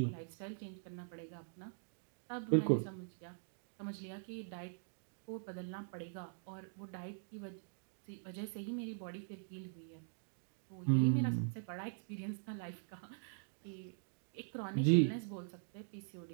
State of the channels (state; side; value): silent; left; digital silence